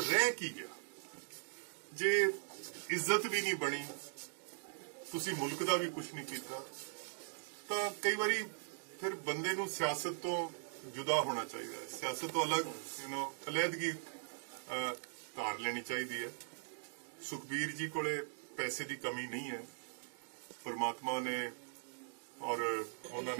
ਕੀ ਗਿਆ? ਜੇ ਇੱਜ਼ਤ ਵੀ ਨਹੀਂ ਬਣੀ, ਤੁਸੀਂ ਮੁਲਕ ਦਾ ਵੀ ਕੁਝ ਨਹੀਂ ਕੀਤਾ ਤਾਂ ਕਈ ਵਾਰੀ ਫਿਰ ਬੰਦੇ ਨੂੰ ਸਿਆਸਤ ਤੋਂ ਜੁਦਾ ਹੋਣਾ ਚਾਹੀਦਾ ਹੈ, ਸਿਆਸਤ ਤੋਂ ਅਲੱਗ ਅਲੱਦਗੀ ਧਾਰ ਲੈਣੀ ਚਾਹੀਦੀ ਹੈ। ਸੁਖਬੀਰ ਜੀ ਕੋਲੇ ਪੈਸੇ ਦੀ ਕਮੀ ਨਹੀਂ ਹੈ, ਪਰਮਾਤਮਾ ਨੇ और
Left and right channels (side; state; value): left; silent; digital silence